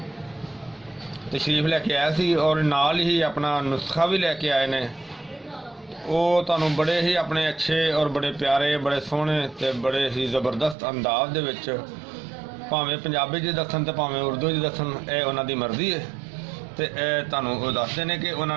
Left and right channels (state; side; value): drops out; left; at 10.8 s